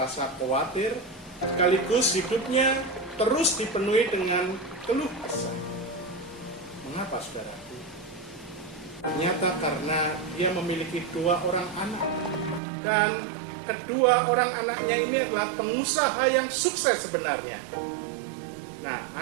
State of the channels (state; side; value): drops out; left; at 12.6 s